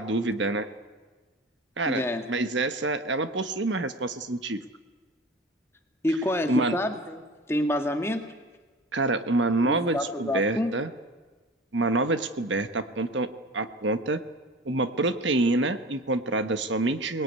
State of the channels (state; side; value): normal; both; correlation 0.37